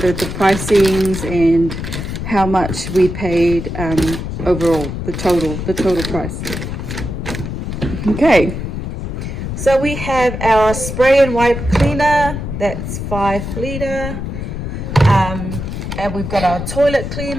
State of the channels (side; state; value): left; noise; rumble, 5 dB below the sound